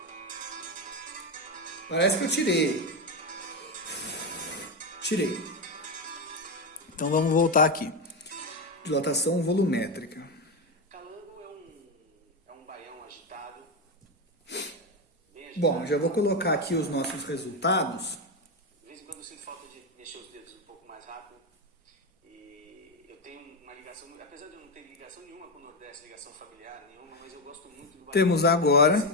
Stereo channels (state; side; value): normal; both; correlation 0.11